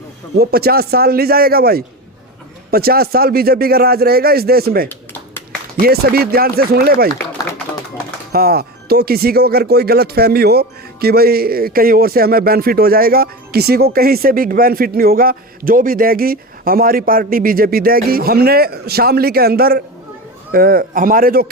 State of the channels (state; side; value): normal; both; correlation 0.25